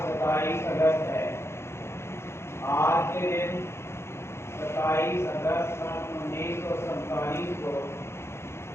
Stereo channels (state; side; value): late; right; 0.12 ms